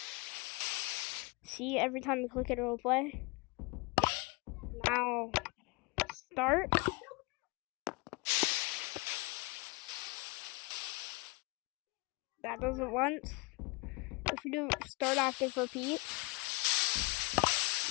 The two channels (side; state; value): right; quieter; 28.0 dB